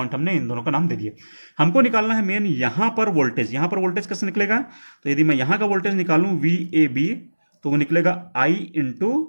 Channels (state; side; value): inverted; both; correlation -1.00